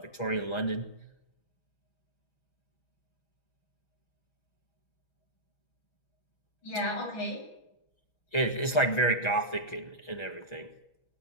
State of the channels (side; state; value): right; late; 6.2 ms